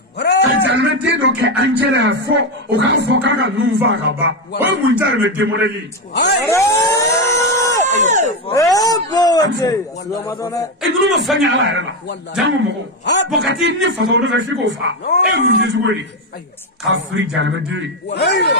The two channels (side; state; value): both; normal; correlation 0.10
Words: ka jaramɛden dɔ kɛ an cɛ la fɔ o k'a fɔ k'a ka nun fa ka ban o ye mun jari bɛ demodeli nunu ma fɛn kɛ ala yɛrɛ la jango mɔgɔ bɔn ka t'i ni faso nɔfɛ f'i k'o fa e ye mun kɛ cogo ye k'a firi jaramɛden ye